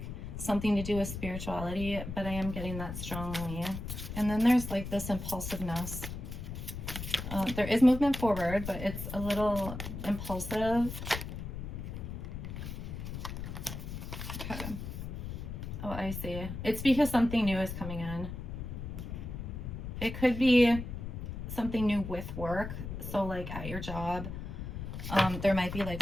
something to do with spirituality, but I am getting that strongly. And then there's like this impulsiveness. There is movement forward, but it's a little impulsive. Okay. Oh, I see. It's because something new is coming in. It could be something new with work. So like at your job, there might be like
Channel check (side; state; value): left; noise; rumble, 7 dB below the sound